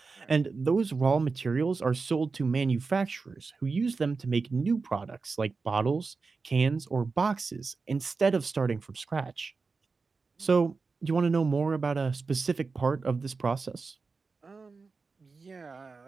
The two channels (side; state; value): left; quieter; 4.4 dB